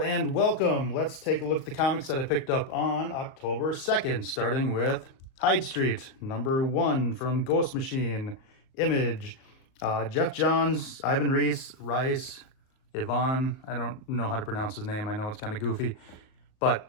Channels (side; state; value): right; late; 38 ms